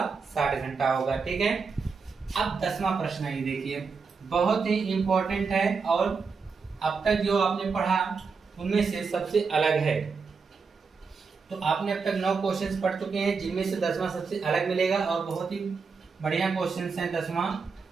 60 घंटा होगा, ठीक है। अब 10वां प्रश्न ये देखिए, बहुत ही इंपॉर्टेंट है और अब तक जो आपने पढ़ा उनमें से सबसे अलग है। तो आपने अब तक 9 क्वेश्चंस पढ़ चुके हैं, जिनमें से 10वां सबसे अलग मिलेगा, और बहुत ही बढ़िया क्वेश्चंस हैं 10वां,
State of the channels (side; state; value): left; quieter; 5.1 dB